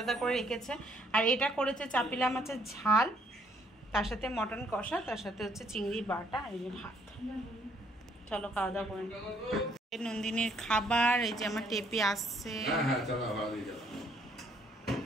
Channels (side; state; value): both; normal; correlation 0.66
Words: করে রেখেছে। আর এটা করেছে চাপিলা মাছের ঝাল, তার সাথে মটন কষা, তার সাথে হচ্ছে চিংড়ি বাটা, আর এই যে ভাত। চলো খাওয়া দাওয়া করে। নন্দিনীর খাবার, এই যে আমার টেপি আসছে।